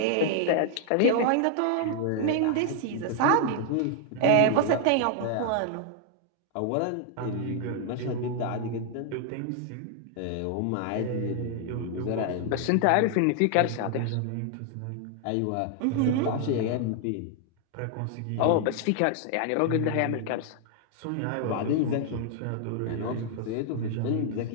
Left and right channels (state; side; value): different; both; correlation 0.00